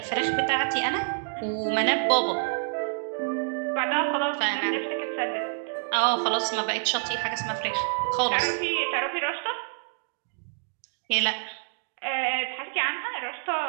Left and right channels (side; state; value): left; silent; digital silence